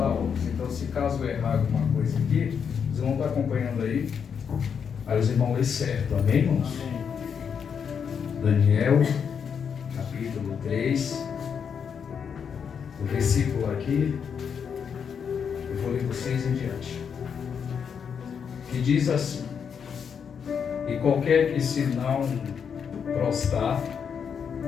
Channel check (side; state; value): right; quieter; 7.0 dB